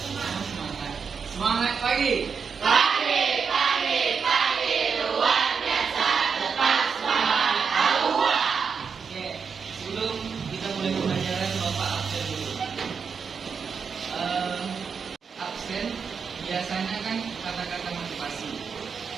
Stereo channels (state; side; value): quieter; left; 6.0 dB